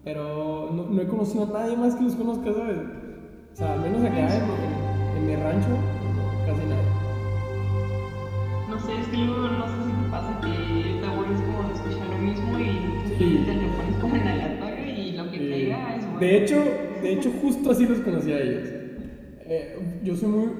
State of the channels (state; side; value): identical; both; correlation 1.00